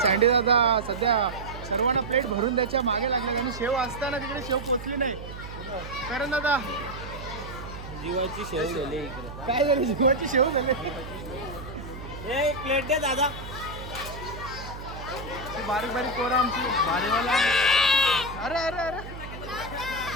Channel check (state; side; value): noise; right; hum, 11 dB below the sound